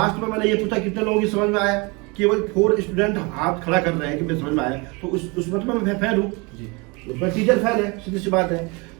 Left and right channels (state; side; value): quieter; left; 28.2 dB